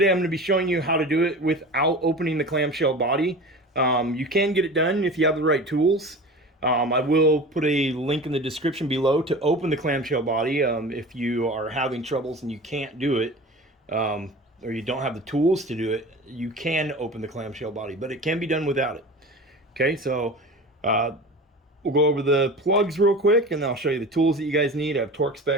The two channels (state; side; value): normal; both; correlation 0.35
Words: I'm going to be showing you how to do it without opening the clamshell body. You can get it done if you have the right tools. I will put a link in the description below to open the clamshell body if you are having troubles and you can't do it, or you don't have the tools to do it. You can open the clamshell body, but it can be done without it. Okay, so we'll go over the plugs real quick, and then I'll show you the tools that you guys need. I have torque